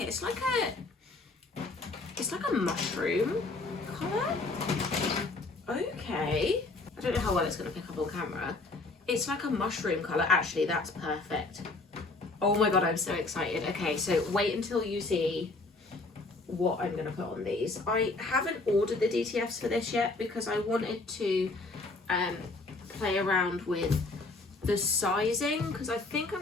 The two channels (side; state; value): right; quieter; 3.4 dB